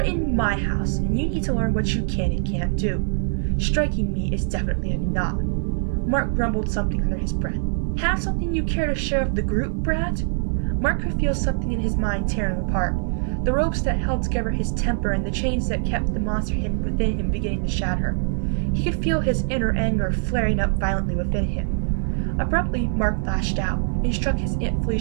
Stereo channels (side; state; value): left; silent; digital silence